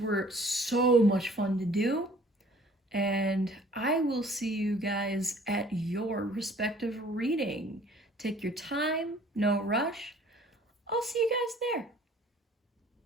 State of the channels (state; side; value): normal; both; correlation 0.54